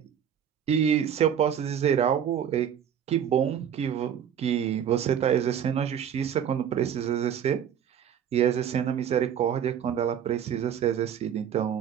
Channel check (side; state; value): left; quieter; 8.9 dB